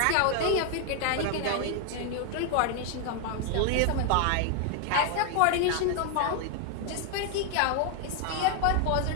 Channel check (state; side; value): different; both; correlation 0.00